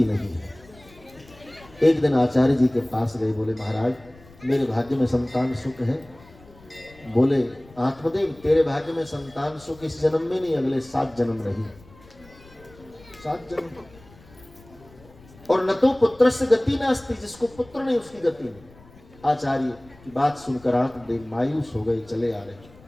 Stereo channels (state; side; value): noise; left; rumble, 24 dB below the sound